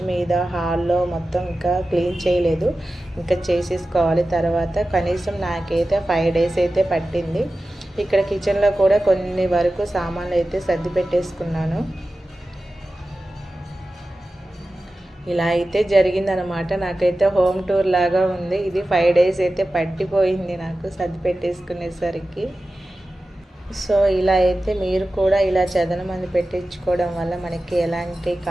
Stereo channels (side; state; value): both; normal; correlation 0.94